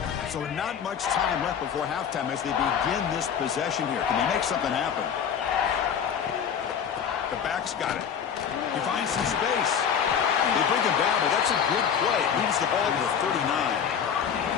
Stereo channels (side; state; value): right; quieter; 7.7 dB